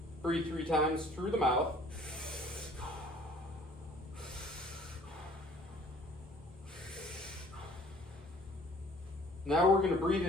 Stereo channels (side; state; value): both; normal; correlation 0.54